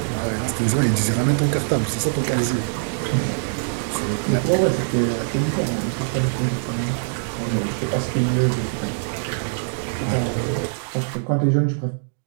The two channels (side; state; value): left; silent; digital silence